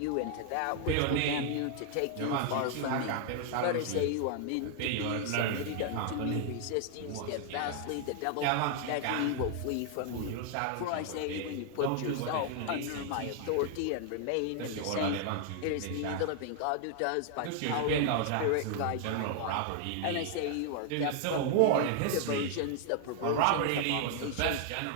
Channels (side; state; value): both; different; correlation 0.00